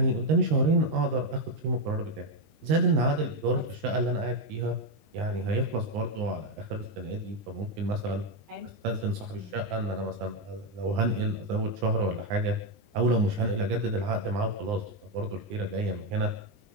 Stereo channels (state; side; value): late; left; 19 ms